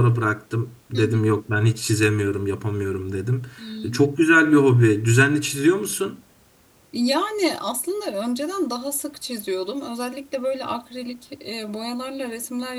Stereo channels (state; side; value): identical; both; correlation 1.00